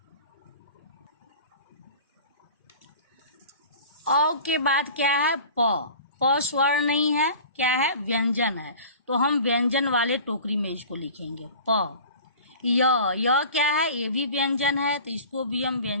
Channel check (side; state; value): both; inverted; correlation -0.41